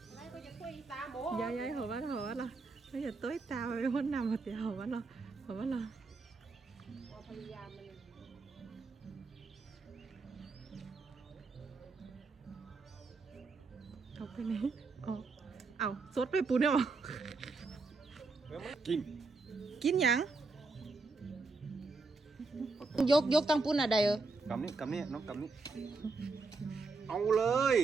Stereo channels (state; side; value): quieter; left; 3.9 dB